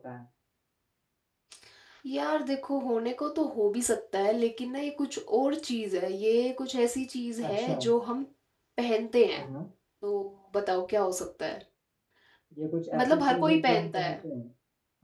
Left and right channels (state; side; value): identical; both; correlation 1.00